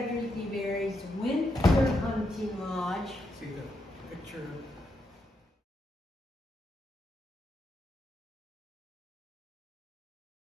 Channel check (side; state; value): both; normal; correlation 0.81